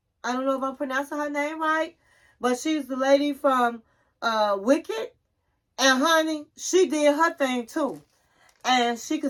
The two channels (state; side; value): identical; both; correlation 1.00